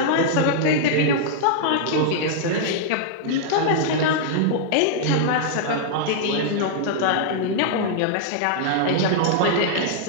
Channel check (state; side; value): different; both; correlation -0.01